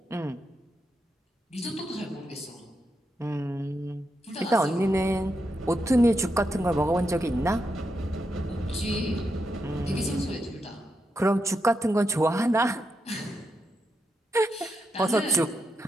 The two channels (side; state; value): both; normal; correlation 0.84